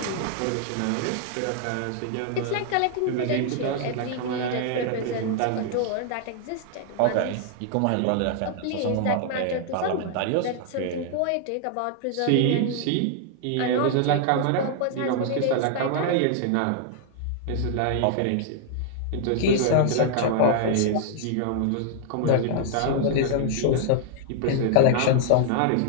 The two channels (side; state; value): both; different; correlation -0.01